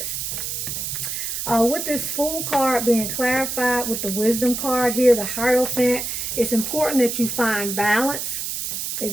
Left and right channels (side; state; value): right; noise; hiss, 4 dB below the sound